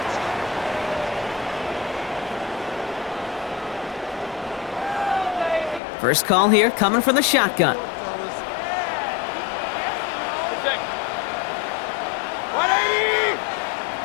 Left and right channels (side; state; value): right; drops out; at 5.8 s